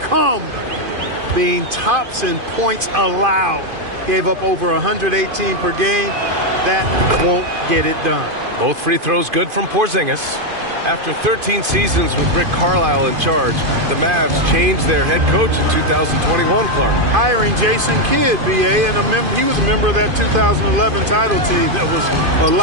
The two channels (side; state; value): left; late; 2.5 ms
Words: being tops in points allowed. Gave up over 118 per game. That won't get it done. Both free throws good from Porzingis. After 13 seasons with Rick Carlisle in charge, the Mavs changed their head coach in 2021, Clark. Hiring Jason Kidd, BA, and he was a member of that 2011 title team. That was a